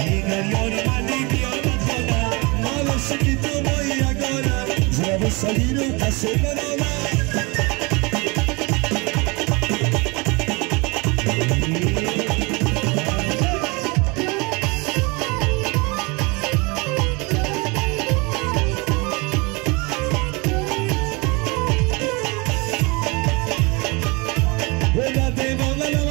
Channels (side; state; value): left; quieter; 27.8 dB